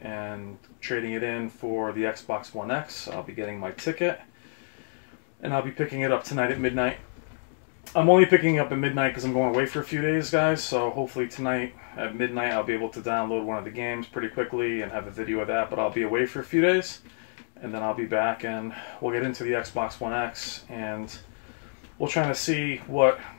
and trading it in for the Xbox One X. I'll be getting my ticket and I'll be picking it up tonight at midnight. I'm only picking it up at midnight because I'm going away for a few days, guys, so hopefully tonight at midnight I'll be able to download one of the games pretty quickly and have a video of that, but I'll be away for a few days, and then I'll be back and we'll get into the Xbox One X, and we'll try to see what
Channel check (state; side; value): silent; right; digital silence